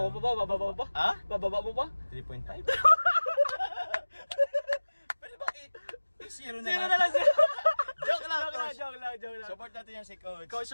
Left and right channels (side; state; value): both; inverted; correlation -1.00